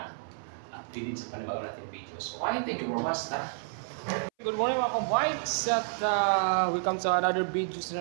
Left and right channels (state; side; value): silent; left; 58 dB below the other